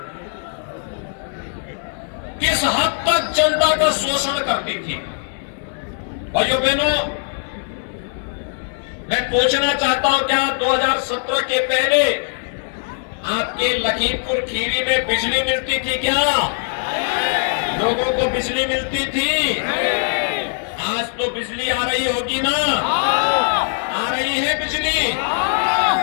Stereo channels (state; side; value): silent; right; 65 dB below the other